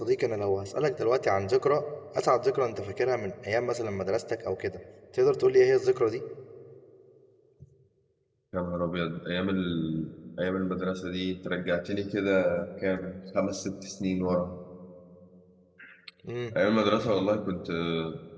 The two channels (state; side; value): identical; both; correlation 1.00